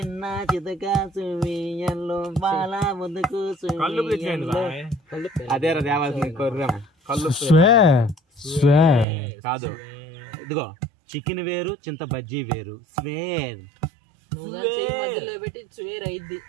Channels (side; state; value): left; drops out; at 9.1 s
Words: చితక సువ్వియల్లో బాల ముదుకు సువ్వియల్లో అదేరా దేవాల్సింది కొర్రమ్మ కళ్ళు కాదు ఇదిగో చికెన్ వేరు చింత బజ్జీ వేరు స్వేర్